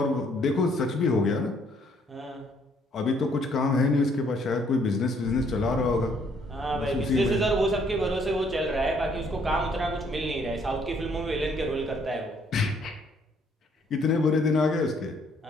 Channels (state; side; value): normal; both; correlation 0.66